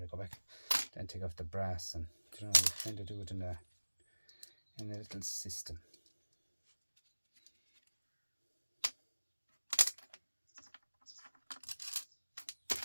I go back then take off the brass, and you know, you kind of do it in a little system.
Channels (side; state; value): both; inverted; correlation -1.00